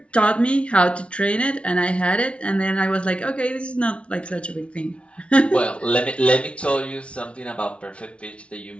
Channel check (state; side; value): late; right; 0.060 ms